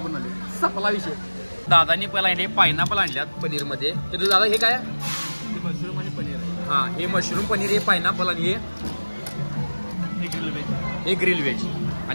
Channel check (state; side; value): inverted; both; correlation -1.00